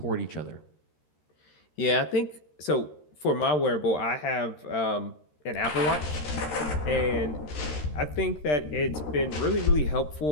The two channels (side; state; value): right; late; 13 ms